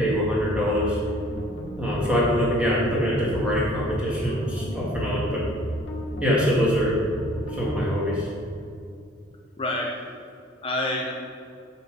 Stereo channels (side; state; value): both; normal; correlation 0.53